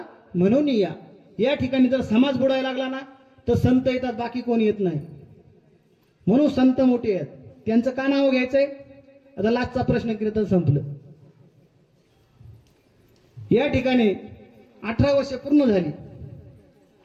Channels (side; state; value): both; identical; correlation 1.00